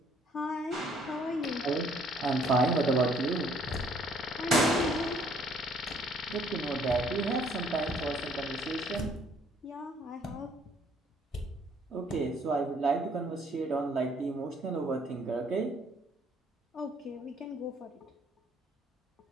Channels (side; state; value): both; normal; correlation 0.62